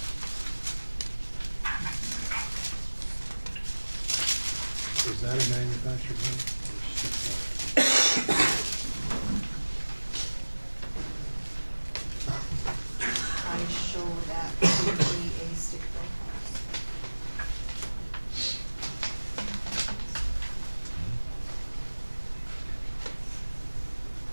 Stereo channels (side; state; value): both; inverted; correlation -1.00